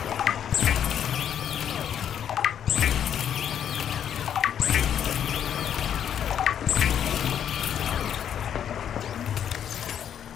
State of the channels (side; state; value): right; quieter; 9.2 dB